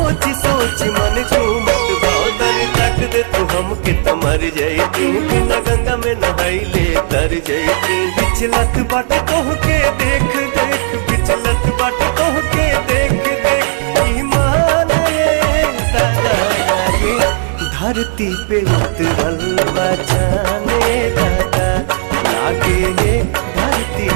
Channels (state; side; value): silent; left; 71 dB below the other